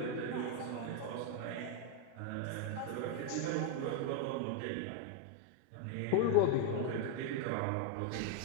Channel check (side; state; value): both; different; correlation 0.00